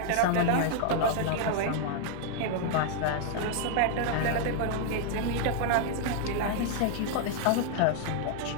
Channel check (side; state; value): both; different; correlation 0.00